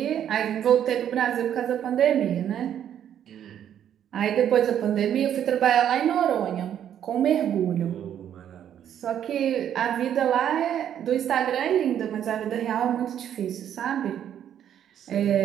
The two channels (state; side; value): quieter; left; 9.9 dB